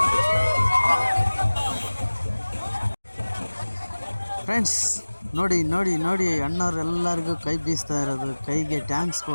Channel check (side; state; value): both; inverted; correlation -1.00